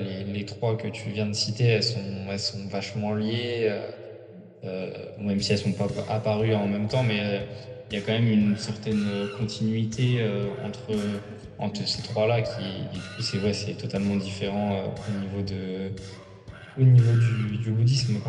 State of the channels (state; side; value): identical; both; correlation 1.00